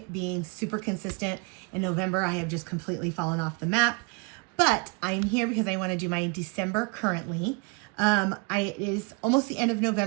being super consistent in November. I have just completely fallen off the map, but I'm here because I want to do my December currently. It is almost the end of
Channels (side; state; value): left; quieter; 29.6 dB